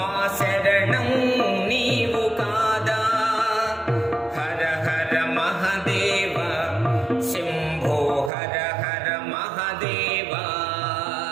शरणं नीवु कादा। हर हर महादेव शंभो हर हर महादेव।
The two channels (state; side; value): drops out; left; at 8.3 s